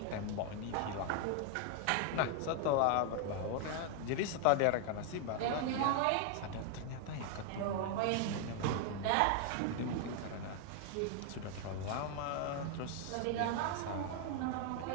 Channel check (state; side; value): different; both; correlation 0.00